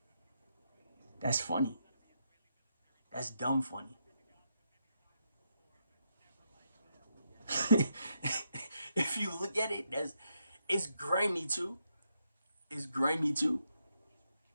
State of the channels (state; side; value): inverted; both; correlation -0.80